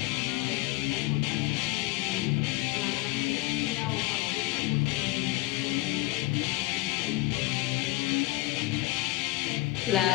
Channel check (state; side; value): quieter; right; 19.5 dB